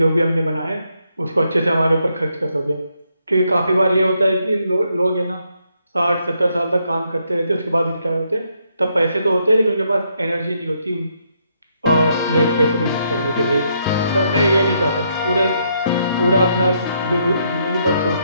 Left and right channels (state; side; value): inverted; both; correlation -0.76